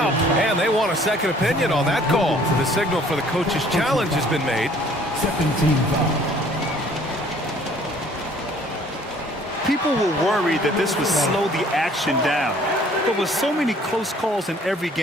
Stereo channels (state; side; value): normal; both; correlation 0.57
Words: And they want a second opinion on that call. The signal for the coach's challenge has been made. Second team foul. People were worried that this would slow the action down. But with so many close calls in every